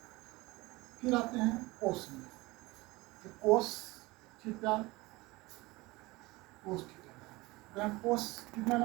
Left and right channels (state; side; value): quieter; left; 21.8 dB